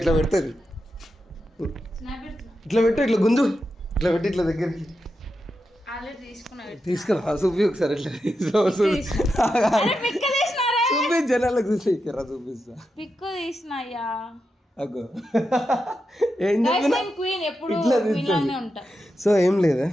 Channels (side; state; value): both; normal; correlation 0.88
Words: పెడుతుంది. స్నాప్ పెడుతున్నా. ఇట్లా పెట్టు, ఇట్లా గుంజు, ఇట్లా పెట్టి ఇట్లా దగ్గరికి ఆల్రెడీ తీసుకున్నా. తీసుకురా చూపి ఒకసారి ఇట్లా చూపి జనాలకు చూసి చూపిస్తా. పిక్కు తీసినాయ్యా. అగో ఏం చెప్పినా క్వీన్ ఎప్పుడు ఇట్లా క్వీన్ లానే ఉంటా. సో ఏం లేదా,